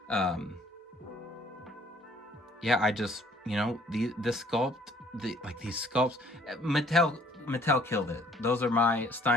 yeah, I just, you know, this sculpt, these sculpts, Mattel killed it. Those are my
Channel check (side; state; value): both; normal; correlation 0.59